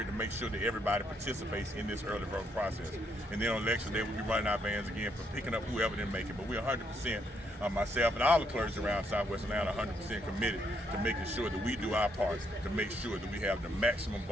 to make sure that everybody participates in this early voting process. And then on election day, we'll be running our vans again for picking up whoever didn't make it. But we're 100%, myself and all the clergy around Southwest Atlanta, 100% committed to making sure that we do our parts to make sure that we have the maximum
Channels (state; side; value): normal; both; correlation 0.74